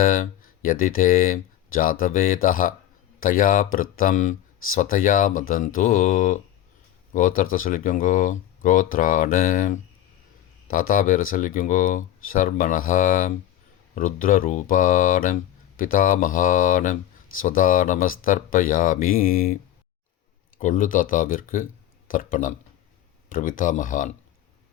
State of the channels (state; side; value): quieter; right; 12.4 dB